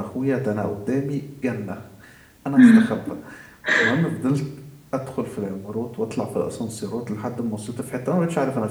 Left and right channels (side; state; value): both; identical; correlation 1.00